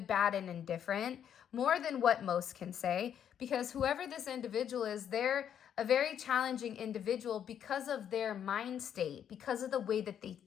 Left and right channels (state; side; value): quieter; right; 9.1 dB